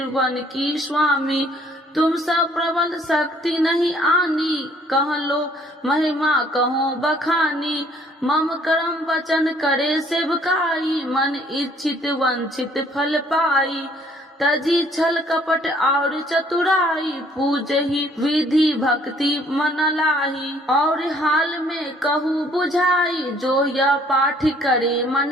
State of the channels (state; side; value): normal; both; correlation 0.61